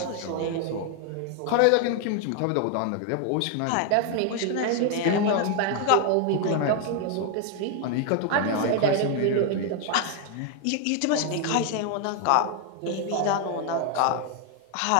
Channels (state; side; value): different; both; correlation 0.00